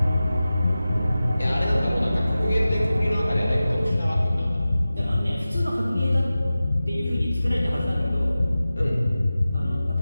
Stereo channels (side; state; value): both; inverted; correlation -0.95